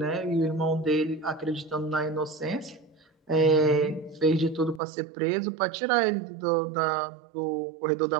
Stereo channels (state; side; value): drops out; left; at 4.8 s